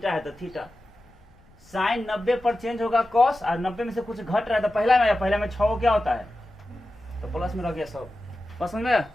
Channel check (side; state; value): left; noise; rumble, 28 dB below the sound